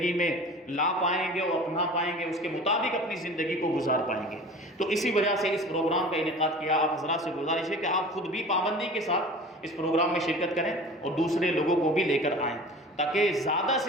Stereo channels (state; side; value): normal; both; correlation 0.40